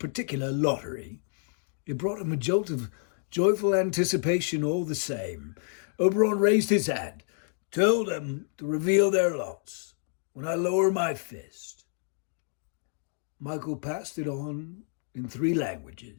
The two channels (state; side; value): silent; right; digital silence